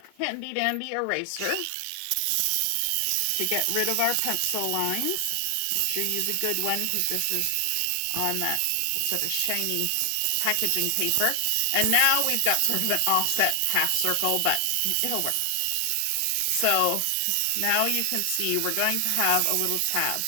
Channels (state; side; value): different; both; correlation 0.00